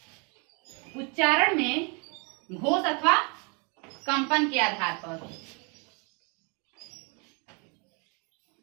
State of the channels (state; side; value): quieter; left; 33.9 dB